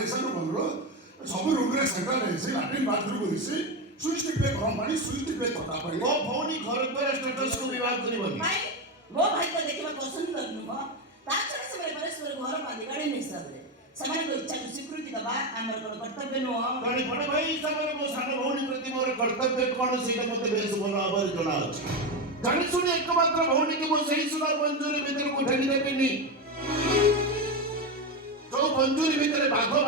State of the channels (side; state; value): both; normal; correlation 0.13